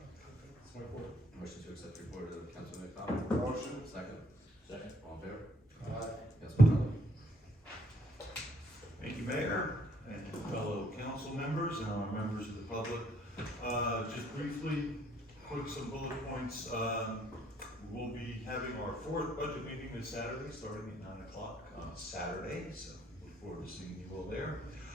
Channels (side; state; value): both; normal; correlation 0.66